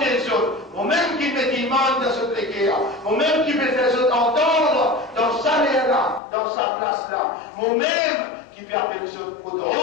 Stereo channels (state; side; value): drops out; right; at 6.2 s